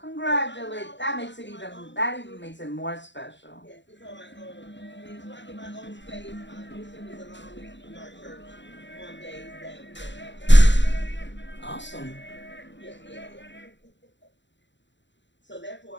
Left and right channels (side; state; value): right; late; 0.53 ms